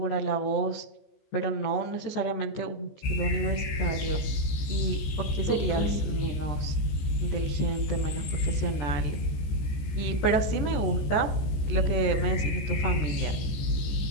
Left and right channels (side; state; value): right; late; 14 ms